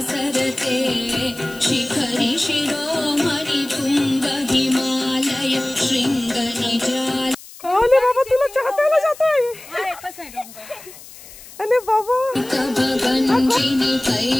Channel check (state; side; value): noise; left; hiss, 18 dB below the sound